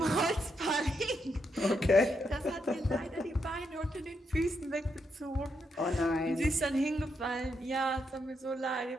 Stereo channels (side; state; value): both; normal; correlation 0.80